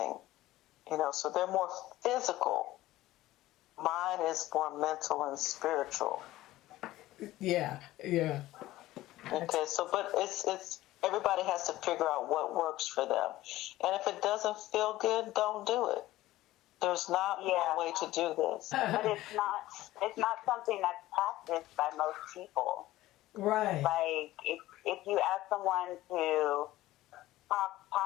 So they're more physical. Mine is more mental and spiritual. Yeah. Okay, but it's everybody has to figure out what works for them. And if it doesn't feel good, don't do it. There's not one way to do this. But it's not something that's practiced by most people. Right. Like if you ask someone to talk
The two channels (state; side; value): quieter; right; 16.3 dB